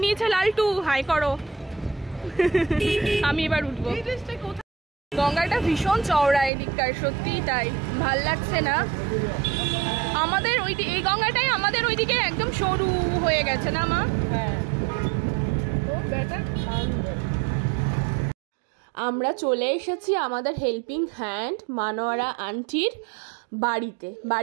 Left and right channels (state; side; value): drops out; left; at 6.5 s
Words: নিয়েছে লালটু, হাই করো। আমি এবার উঠবো। গঙ্গাটা ভীষণ চওড়া এদিককার, সত্যি তাই, ভাল লাগছে না। আমাদের এই গঙ্গাটাই আমাদের ওইদিকে একদম সরু হয়ে গেছে না মা? আমরা চলে এসেছি আমাদের হেল্পিং হ্যান্ড মানোয়ারা আন্টির বাড়িতে।